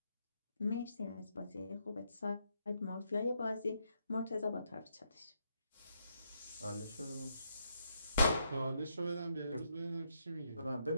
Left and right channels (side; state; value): both; inverted; correlation -0.78